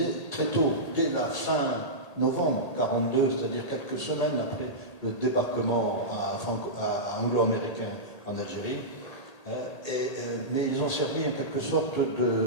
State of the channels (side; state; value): right; late; 1.8 ms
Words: très tôt, dès la fin novembre 1942, c'est-à-dire quelques semaines après le débarquement anglo-américain en Algérie. Mais ils ont servi en quelque sorte